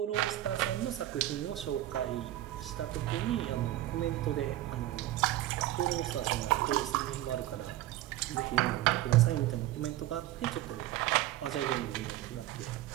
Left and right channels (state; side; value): quieter; left; 14.7 dB